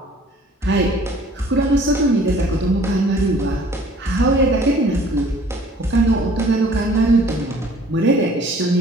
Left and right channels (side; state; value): both; normal; correlation 0.53